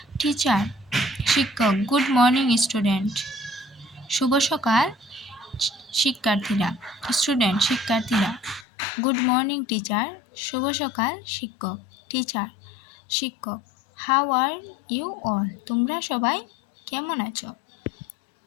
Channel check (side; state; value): right; drops out; at 8.7 s